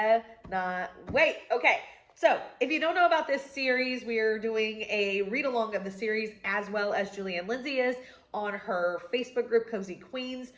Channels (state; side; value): identical; both; correlation 1.00